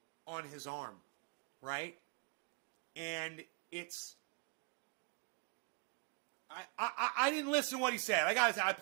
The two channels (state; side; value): quieter; left; 35.5 dB